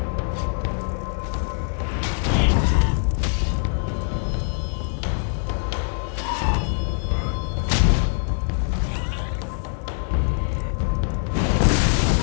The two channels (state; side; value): silent; right; 55 dB below the other